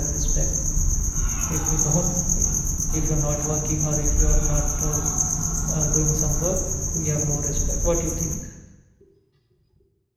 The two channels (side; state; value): both; identical; correlation 1.00